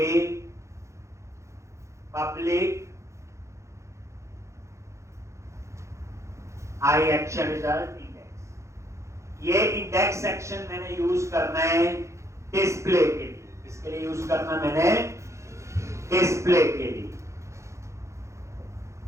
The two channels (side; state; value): left; late; 0.14 ms